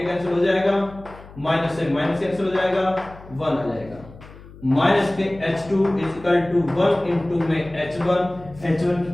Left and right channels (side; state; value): left; noise; hum, 19 dB below the sound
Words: कैंसिल हो जाएगा, माइनस से माइनस कैंसिल हो जाएगा, 1 आ जाएगा। माइनस के h2 is equal to 1 into में h1